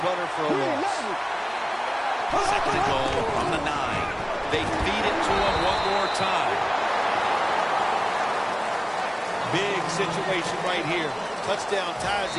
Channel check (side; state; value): both; identical; correlation 1.00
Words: runner for a loss. Second and goal from the 9. They feed it to him one more time. Big situation right here. Touchdown ties